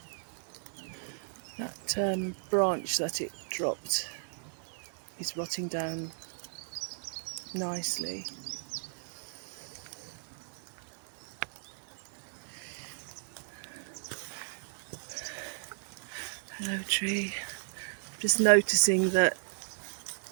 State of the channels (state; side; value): silent; left; digital silence